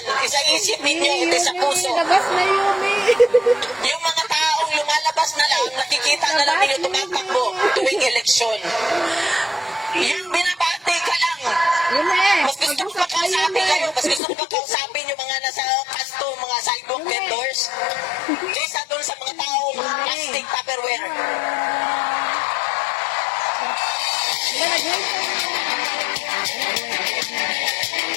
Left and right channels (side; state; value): right; drops out; at 14.2 s